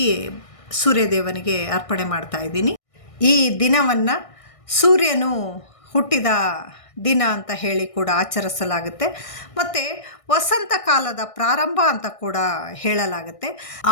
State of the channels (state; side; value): late; right; 1.6 ms